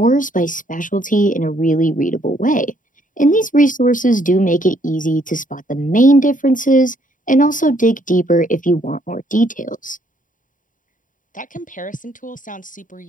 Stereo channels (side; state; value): right; late; 0.38 ms